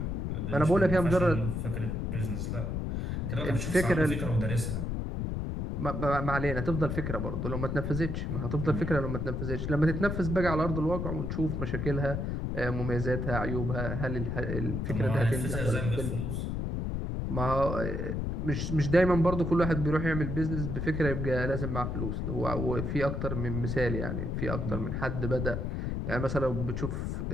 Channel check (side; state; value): left; noise; rumble, 2 dB below the sound